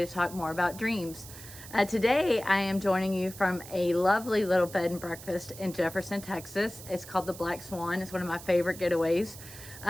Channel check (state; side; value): noise; right; hiss, 15 dB below the sound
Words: to talk more about dreams. Today I am joining you from a lovely little bed and breakfast in Jefferson, Texas. It's called the Black Swan. It's one of my favorite getaways.